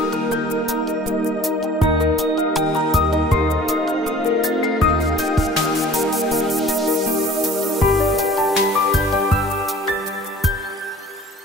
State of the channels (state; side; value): normal; both; correlation 0.49